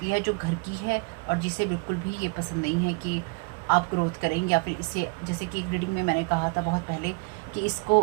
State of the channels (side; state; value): left; quieter; 32.5 dB